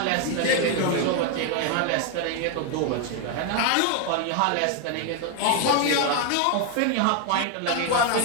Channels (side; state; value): both; different; correlation 0.01